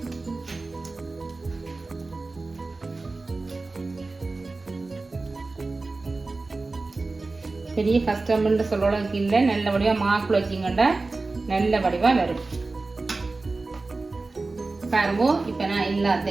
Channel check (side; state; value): left; quieter; 3.5 dB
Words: பெரிய கஷ்டம்னு சொல்றதுக்கு இல்லை. நல்ல வடிவாக மாக்குள்ள வச்சிங்கண்டா நல்ல வடிவாக வரும். பாருங்க இப்போ நான்